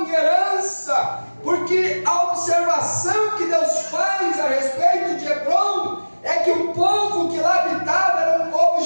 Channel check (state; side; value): inverted; both; correlation -1.00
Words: em herança? Porque a observação que Deus faz a respeito de Hebrom é que o povo que lá habitava era um povo